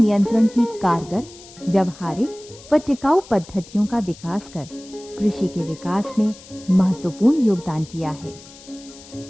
की कारगर, व्यवहारिक व टिकाऊ पद्धतियों का विकास कर कृषि के विकास में महत्वपूर्ण योगदान किया है।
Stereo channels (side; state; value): left; noise; hiss, 20 dB below the sound